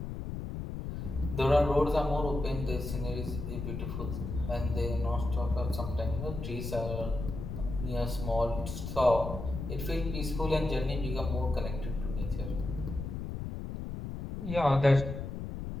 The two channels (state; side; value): noise; left; rumble, 6 dB below the sound